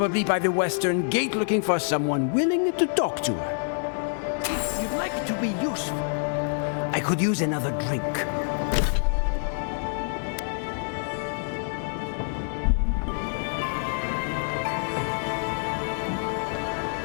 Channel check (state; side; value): silent; right; digital silence